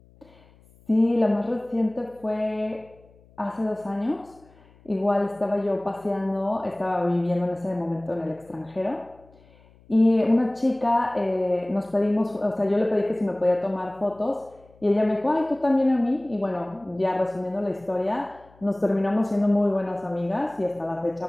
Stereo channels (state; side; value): noise; left; hum, 28 dB below the sound